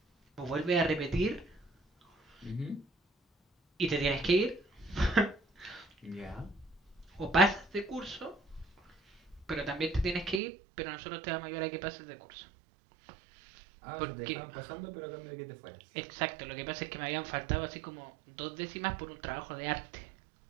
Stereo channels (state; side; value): drops out; left; at 10.4 s